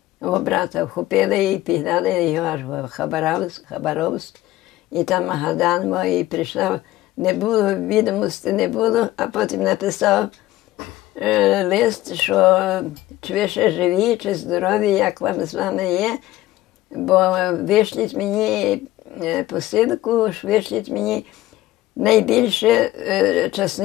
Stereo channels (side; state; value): right; quieter; 16.0 dB